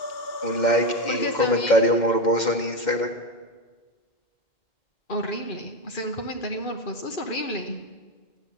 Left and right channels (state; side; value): late; right; 2.1 ms